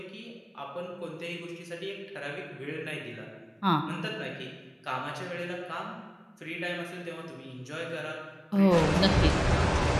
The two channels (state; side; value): identical; both; correlation 1.00